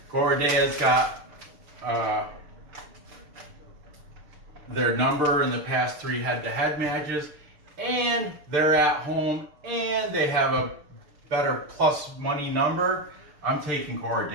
Gorodeya's got their number in the past 3 head-to-head matches, and they're at home, and they have a better plus money number, I'm taking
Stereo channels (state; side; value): late; left; 6.7 ms